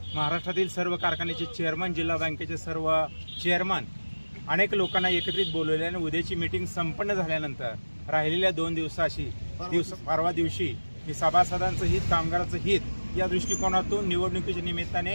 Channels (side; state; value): both; inverted; correlation -1.00